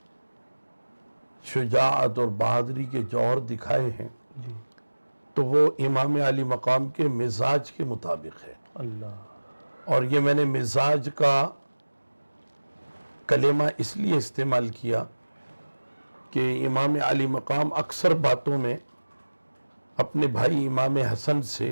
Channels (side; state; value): both; inverted; correlation -1.00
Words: شجاعت اور بہادری کے جوہر دکھائے ہیں، تو وہ امام علی مقام کے مزاج کے مطابق ہے۔ اور یہ میں نے مزاج کا کلمہ اس لیے استعمال کیا کہ امام علی مقام اکثر باتوں میں اپنے بھائی امام حسن